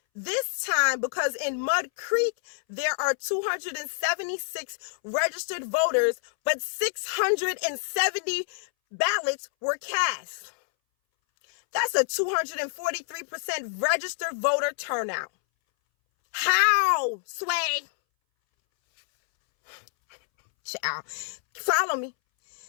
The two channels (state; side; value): silent; right; 60 dB below the other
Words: This time because in Mud Creek, there are 276 registered voters, but 670 ballots were cast. That's a 243% registered voter turnout. How, Sway? Child, follow me.